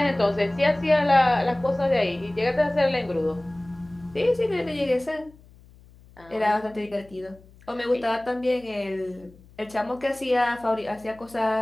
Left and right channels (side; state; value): left; noise; hum, 25 dB below the sound